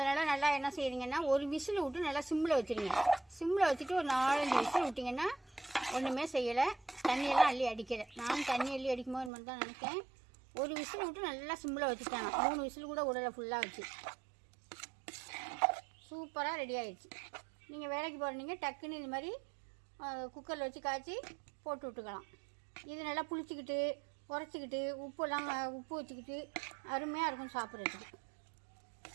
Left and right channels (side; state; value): left; drops out; at 9.3 s